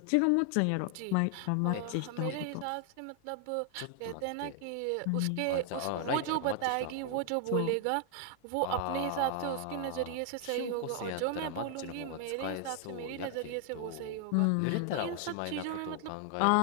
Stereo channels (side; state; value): both; different; correlation 0.00